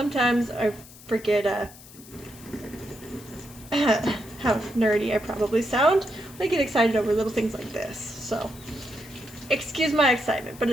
I forget how nerdy I probably sound. I get excited over little things like this. So, excuse my excitement, but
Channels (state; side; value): noise; left; hiss, 20 dB below the sound